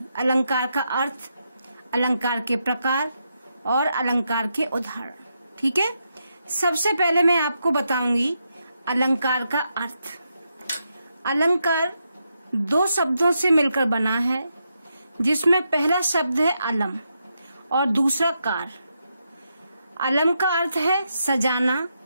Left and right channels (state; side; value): inverted; both; correlation -0.83